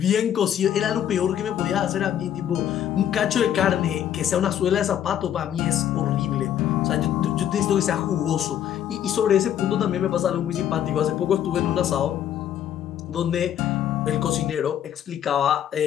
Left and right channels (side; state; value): right; quieter; 10.3 dB